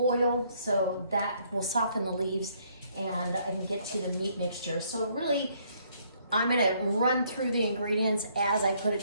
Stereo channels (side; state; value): both; inverted; correlation -0.67